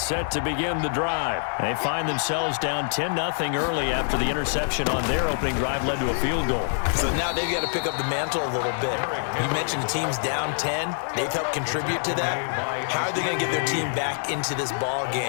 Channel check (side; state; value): right; silent; digital silence